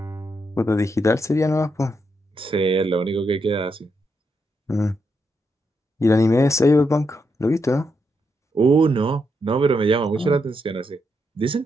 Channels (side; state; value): both; normal; correlation 0.81